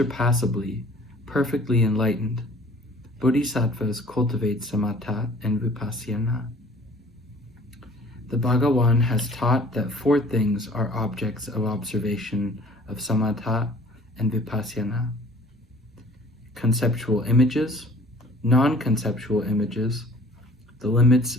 perfectly enlightened, bodhisattvas cultivate samatha and vipassana. The Bhagawan has taught that four things are objects of observation of samatha and vipassana: conceptual images, non-conceptual images, the limits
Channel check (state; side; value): normal; both; correlation 0.51